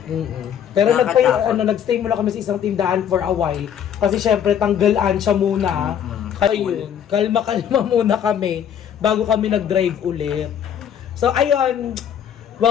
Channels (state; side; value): quieter; right; 9.0 dB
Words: Pero Nakakatakot. nagstay muna kami sa isang tindahan for a while. Kasi syempre tanggalan siya muna. Kaya yun, kalma-kalma muna kami bago kami nag-drive ulit. So ayun,